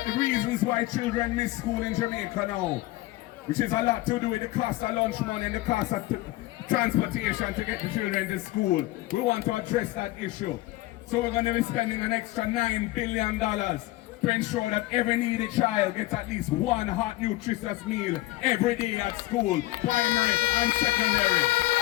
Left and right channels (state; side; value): quieter; right; 18.0 dB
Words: the reasons why children miss school in Jamaica now, which is a lot to do with the cost of lunch money and the cost of transportation to get the children to school. We want to address that issue. So we're going to be spending an extra $9 billion to ensure that every needy child gets at least one hot, nutritious meal every day at school, primary and secondary.